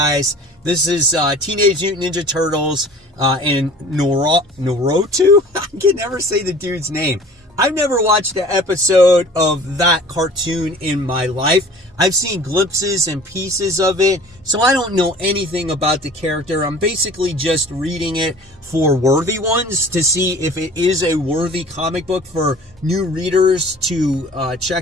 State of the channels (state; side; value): normal; both; correlation 0.46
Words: This is Teenage Mutant Ninja Turtles and Naruto. I can never say the dude's name. I've never watched an episode of that cartoon in my life. I've seen glimpses and pieces of it, so I don't know anything about the character. I'm basically just reading it for worthy ones to see if it is a worthy comic book for new readers to